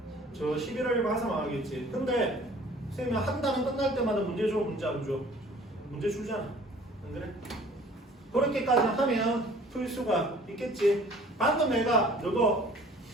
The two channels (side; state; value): both; normal; correlation 0.51